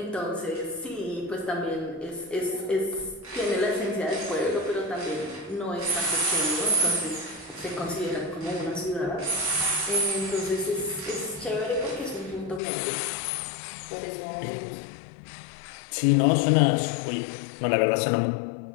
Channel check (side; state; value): right; drops out; at 12.6 s